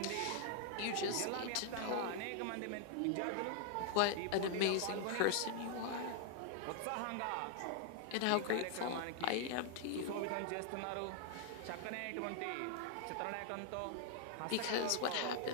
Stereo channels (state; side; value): different; both; correlation 0.00